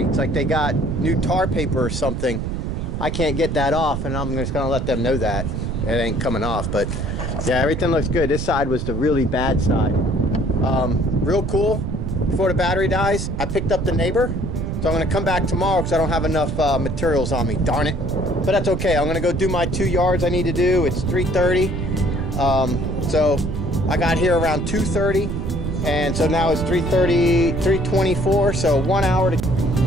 like they got new tar paper or something. I can't get that off, and I'm just gonna let them know that it ain't coming off. But yeah, everything looks good. This side was the really bad side. Real cool. Before the battery dies, I picked up the neighbor, so I'm gonna come back tomorrow because I don't have enough materials on me, darn it. But that's okay. I'm gonna go do my 2 yards I need to do. It's 3:30. So I got here around 2:30, and so now it's 3:30, 3:24, so 1 hour to.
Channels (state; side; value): noise; right; rumble, 3 dB below the sound